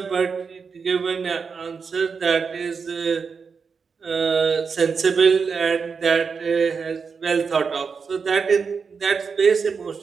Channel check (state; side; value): quieter; left; 5.5 dB